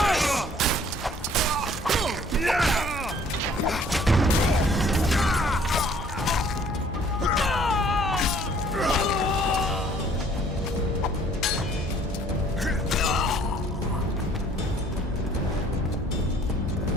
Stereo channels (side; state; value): both; normal; correlation 0.57